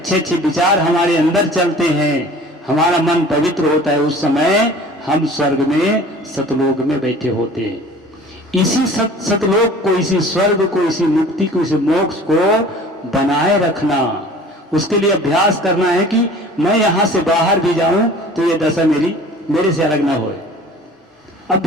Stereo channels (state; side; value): normal; both; correlation 0.45